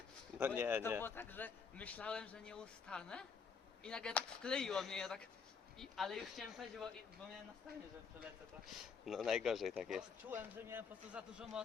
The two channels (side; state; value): right; quieter; 5.9 dB